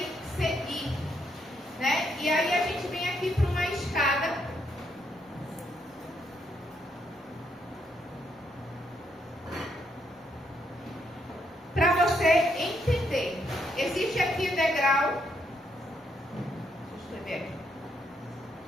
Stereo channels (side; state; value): both; normal; correlation 0.75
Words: seguir, né? E aí a gente vem aqui para uma escada para você entender. Existe aqui o degrau. Deixa eu escrever aqui.